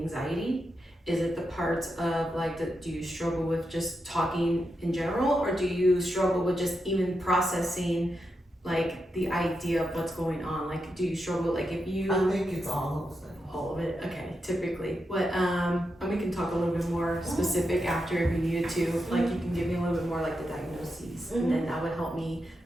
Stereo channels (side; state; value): both; normal; correlation 0.86